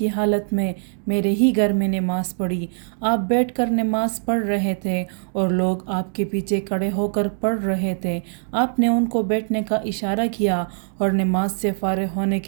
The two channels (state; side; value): silent; left; digital silence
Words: हालत में मेरे ही घर में नमाज़ पढ़ी। आप बैठकर नमाज़ पढ़ रहे थे और लोग आपके पीछे खड़े होकर पढ़ रहे थे। आपने उनको बैठने का इशारा किया और नमाज से फारिग होने